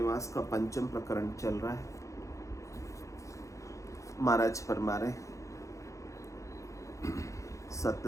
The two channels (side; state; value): right; late; 0.15 ms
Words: का पंचम प्रकरण चल रहा है। महाराज फरमा रहे, सत